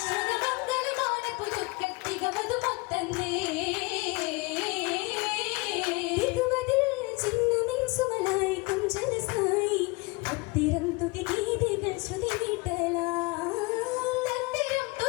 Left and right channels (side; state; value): right; quieter; 26.5 dB